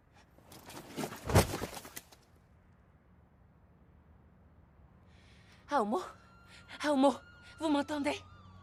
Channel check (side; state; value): both; identical; correlation 1.00